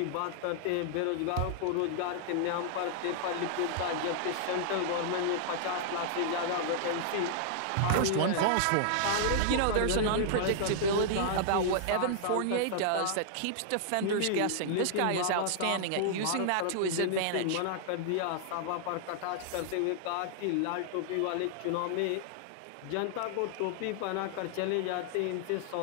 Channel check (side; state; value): both; different; correlation -0.01